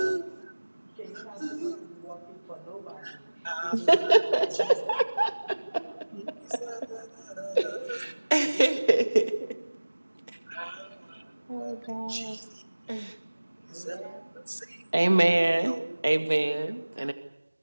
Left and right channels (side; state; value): both; inverted; correlation -1.00